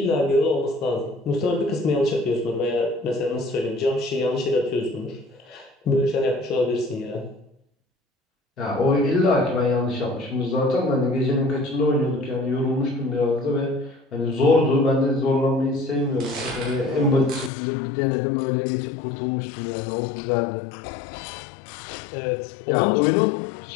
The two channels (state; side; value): drops out; right; at 17.5 s